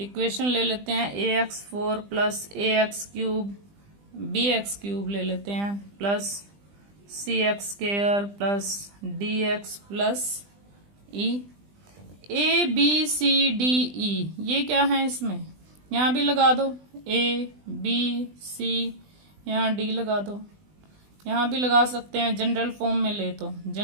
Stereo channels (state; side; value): late; left; 20 ms